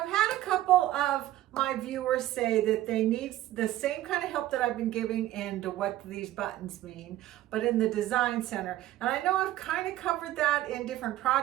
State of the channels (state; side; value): quieter; left; 14.5 dB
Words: had a couple of my viewers say that they need the same kind of help that I've been giving into what these buttons mean, but in the Design Center. And I know I've kind of covered that in different